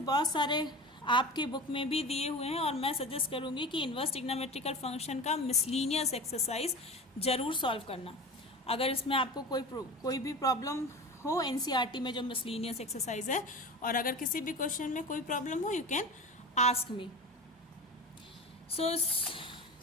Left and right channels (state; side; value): normal; both; correlation 0.32